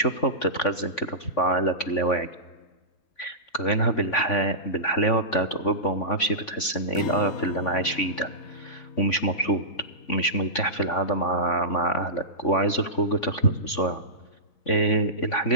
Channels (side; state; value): right; late; 3.5 ms